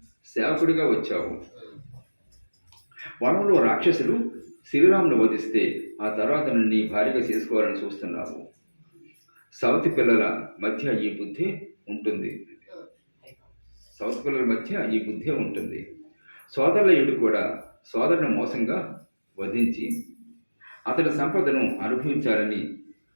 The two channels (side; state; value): both; inverted; correlation -1.00